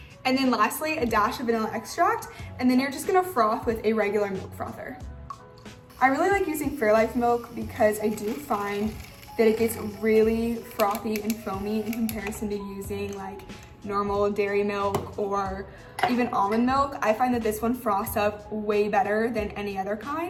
And then lastly, a dash of vanilla extract. And then you're just gonna froth with a regular milk frother. I really like using Fairlife milk because I do find that it gets really frothy and foamy in comparison to using like normal dairy milk or even almond milk. I find that this one froths up way better than any other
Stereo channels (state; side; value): identical; both; correlation 1.00